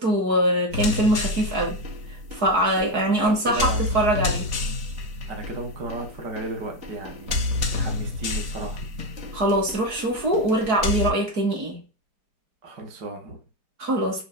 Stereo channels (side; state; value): left; late; 4.7 ms